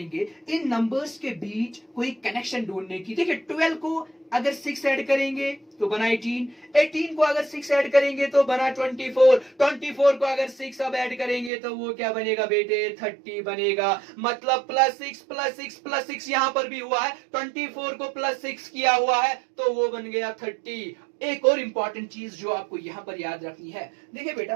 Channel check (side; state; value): left; drops out; at 11.5 s